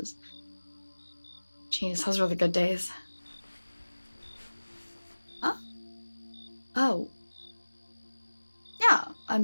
Jeez, those were the good days. Huh? Oh. Yeah,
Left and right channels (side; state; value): both; inverted; correlation -1.00